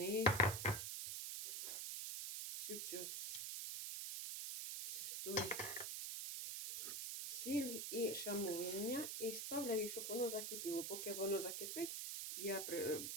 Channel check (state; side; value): noise; right; hiss, 3 dB below the sound